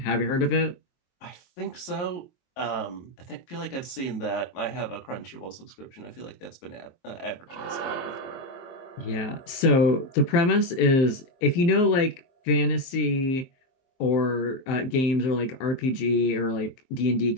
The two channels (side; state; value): right; late; 23 ms